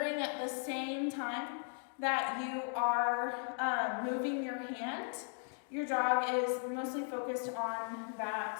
at the same time that you are moving your hand, your dog is mostly focused on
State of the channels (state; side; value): silent; right; 53 dB below the other